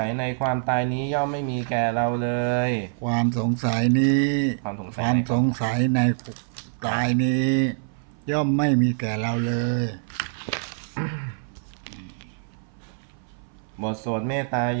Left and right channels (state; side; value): silent; left; 58 dB below the other